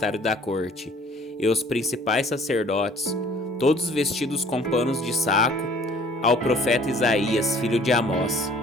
da corte, e os principais sacerdotes, todos vestidos com panos de saco, ao profeta Isaías, filho de Amós.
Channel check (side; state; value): both; normal; correlation 0.54